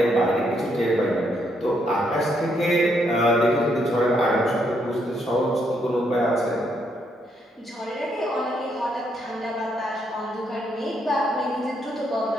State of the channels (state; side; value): normal; both; correlation 0.75